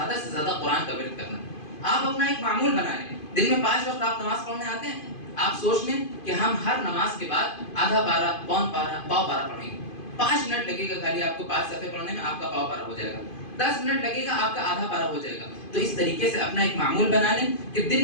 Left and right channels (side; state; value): right; late; 2.5 ms